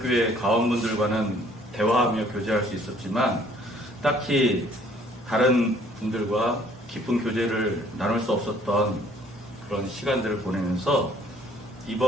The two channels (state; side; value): normal; both; correlation 0.59